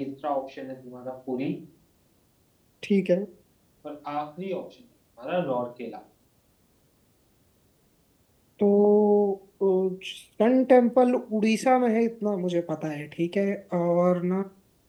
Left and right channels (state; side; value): identical; both; correlation 1.00